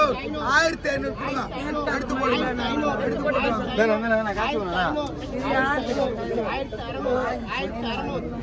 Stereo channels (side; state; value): both; identical; correlation 1.00